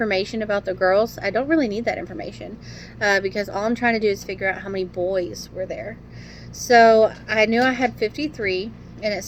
about the girls. I don't really need that information because all I'm trying to do is figure out how many boys were there. So I knew I had 53, and it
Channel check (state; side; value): identical; both; correlation 1.00